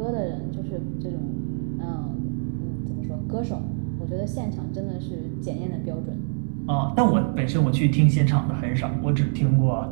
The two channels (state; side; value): silent; left; 62 dB below the other